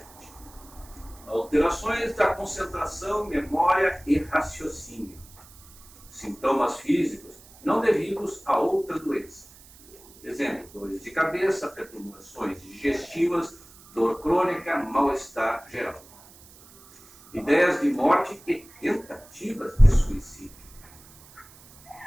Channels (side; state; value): right; noise; hiss, 23 dB below the sound